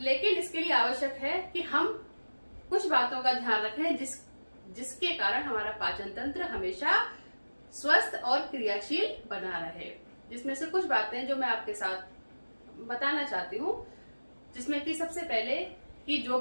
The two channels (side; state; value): both; inverted; correlation -1.00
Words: इसके लिए आवश्यक है कि हम कुछ बातों का ध्यान रखें जिसके कारण हमारा पाचन तंत्र हमेशा स्वस्थ और क्रियाशील बना रहे। जिसमें से कुछ बातें जो मैं आपके साथ बताना चाहती हूँ, जिसमें कि सबसे पहले कि जो